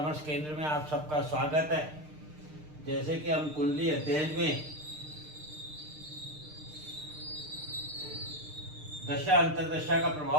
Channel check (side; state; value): left; late; 6.6 ms